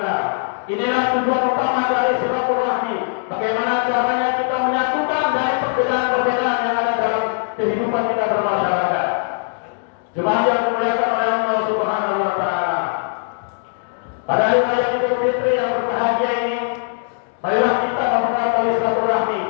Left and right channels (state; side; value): silent; right; digital silence